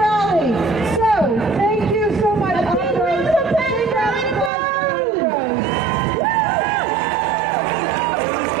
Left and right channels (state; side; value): drops out; left; at 4.5 s